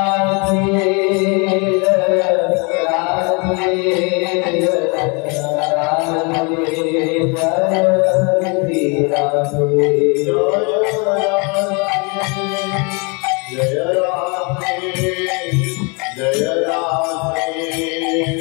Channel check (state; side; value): quieter; right; 31.9 dB